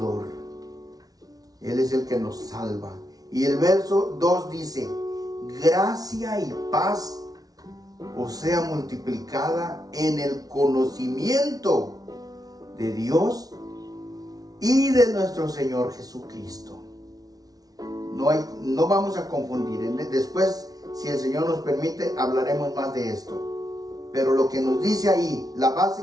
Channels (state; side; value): late; left; 0.18 ms